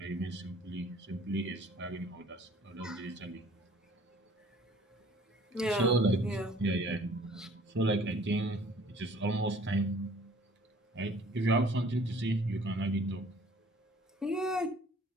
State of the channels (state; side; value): normal; both; correlation 0.53